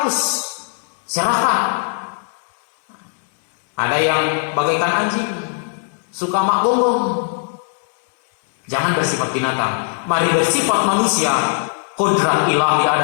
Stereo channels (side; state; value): right; silent; 61 dB below the other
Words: serakah. Ada yang bagaikan anjing, suka mak gonggong. Jangan bersifat binatang. Mari bersifat manusia. Kodrat ilahi